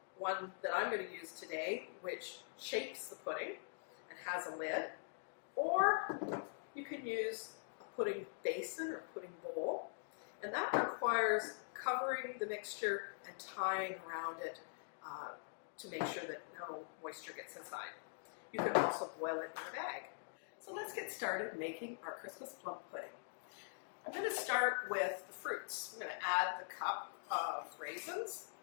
one that I'm going to use today, which shapes the pudding and has a lid, or you can use a pudding basin or pudding bowl, and that requires covering the mixture and tying around it to make sure that no moisture gets inside. You can also boil it in a bag. So let's get started making our Christmas plum pudding. I'm going to start with the fruits. I'm going to add the cup of raisins.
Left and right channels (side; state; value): right; silent; digital silence